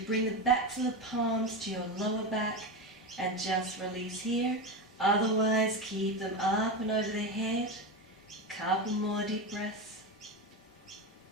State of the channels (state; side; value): normal; both; correlation 0.18